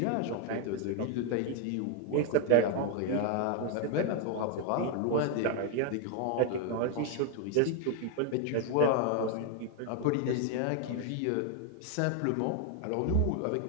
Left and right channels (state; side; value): different; both; correlation 0.00